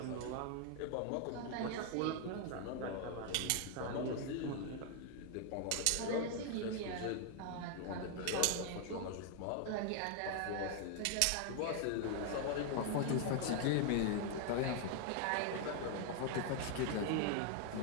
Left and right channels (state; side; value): different; both; correlation 0.00